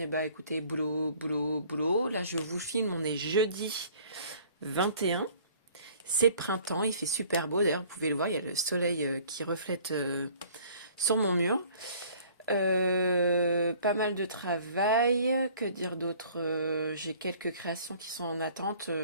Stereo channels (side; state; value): both; inverted; correlation -0.53